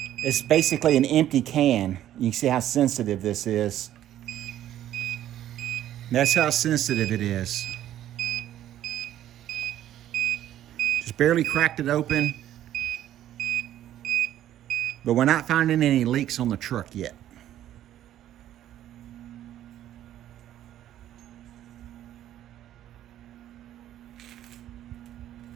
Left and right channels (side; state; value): left; quieter; 12.2 dB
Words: basically an empty can. You can see how sensitive this is. That's how sensitive it is. Just barely cracked it open. But we're not finding any leaks on the truck yet.